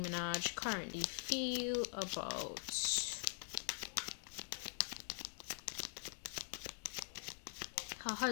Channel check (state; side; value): silent; right; digital silence